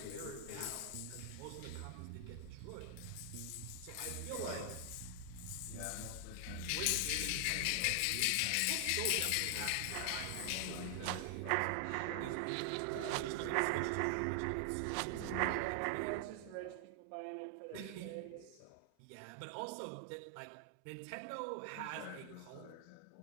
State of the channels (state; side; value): different; both; correlation 0.00